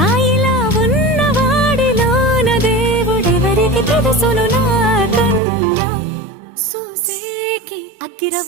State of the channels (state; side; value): drops out; left; at 5.4 s